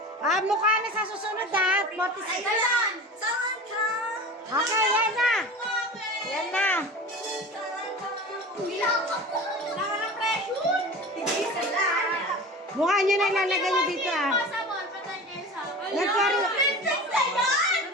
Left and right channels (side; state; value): both; normal; correlation 0.34